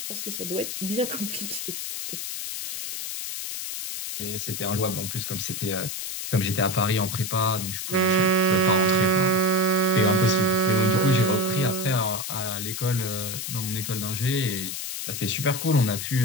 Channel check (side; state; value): left; noise; hiss, 5 dB below the sound